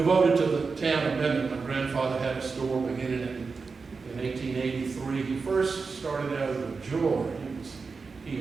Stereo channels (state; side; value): quieter; left; 4.7 dB